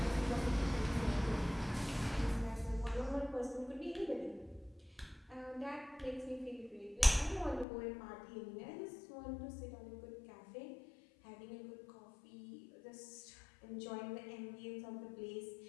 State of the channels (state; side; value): drops out; right; at 7.7 s